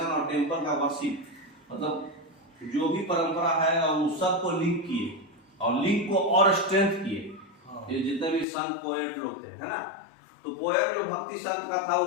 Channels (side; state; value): right; drops out; at 8.5 s